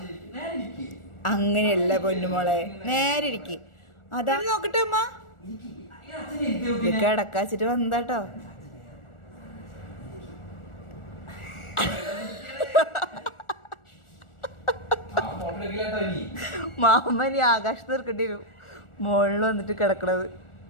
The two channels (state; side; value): late; right; 1.4 ms